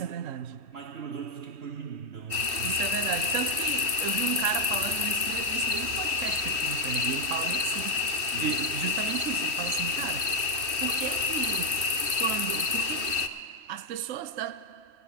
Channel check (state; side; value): late; left; 3.1 ms